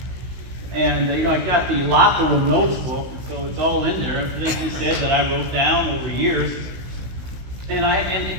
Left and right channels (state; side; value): late; left; 16 ms